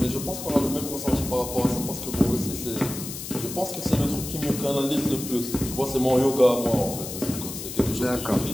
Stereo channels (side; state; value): left; noise; hiss, 8 dB below the sound